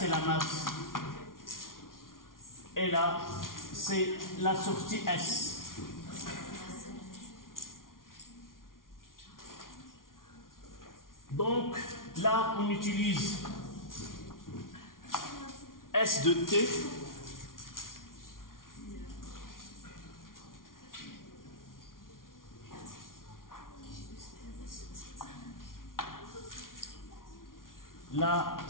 la masse. Et là, c'est la sortie S. Donc, là, on utilise S de T. Là,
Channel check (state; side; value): late; right; 0.90 ms